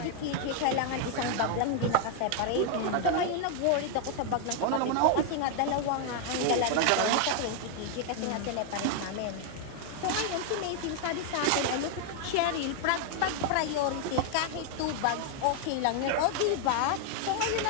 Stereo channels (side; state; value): both; different; correlation 0.00